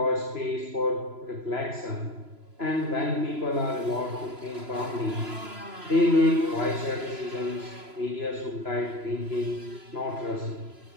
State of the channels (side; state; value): left; late; 3.0 ms